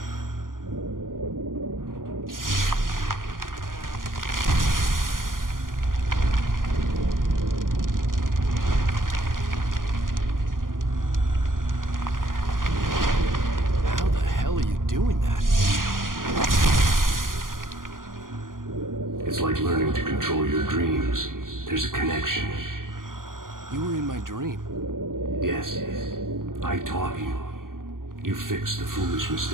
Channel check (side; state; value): left; late; 0.90 ms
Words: How the hell are you doing that? It's like learning to control your dreams. There's a connection. You were in my dream. Yes, I taught you. You fixed the foolish